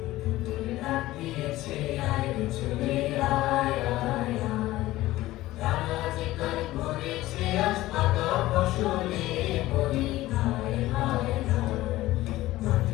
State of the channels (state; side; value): quieter; right; 16.8 dB